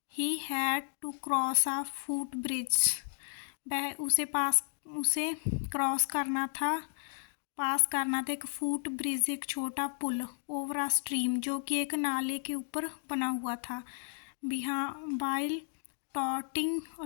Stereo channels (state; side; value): silent; right; digital silence